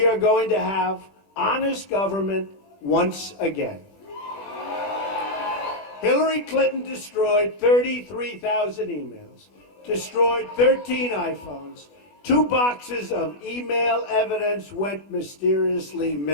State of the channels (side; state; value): right; late; 20 ms